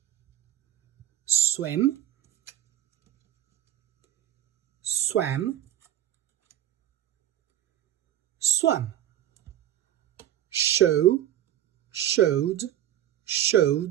Swim, swam, swam. Show, showed,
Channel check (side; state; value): left; quieter; 12.1 dB